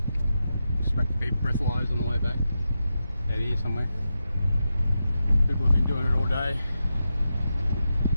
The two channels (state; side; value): inverted; both; correlation -0.88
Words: Expect to be breathalyzed on the way back. Out here somewhere. People have been doing it all day.